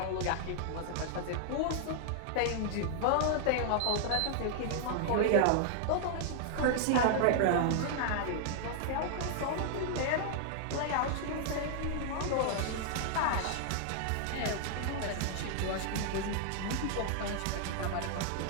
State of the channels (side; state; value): both; different; correlation -0.01